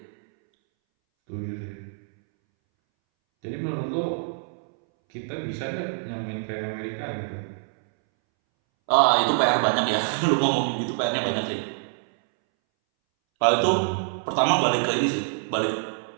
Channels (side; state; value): left; silent; 61 dB below the other